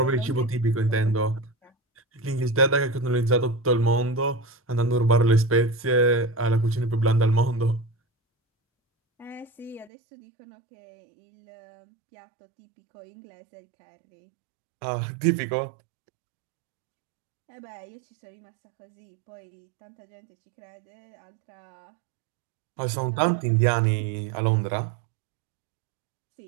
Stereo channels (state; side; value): drops out; left; at 9.9 s